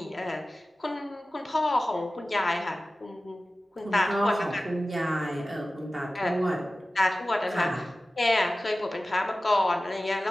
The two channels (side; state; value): both; normal; correlation 0.96